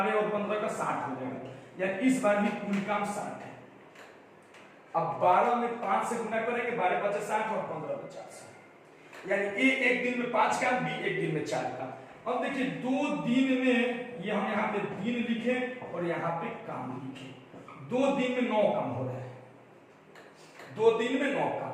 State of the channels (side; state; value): both; identical; correlation 1.00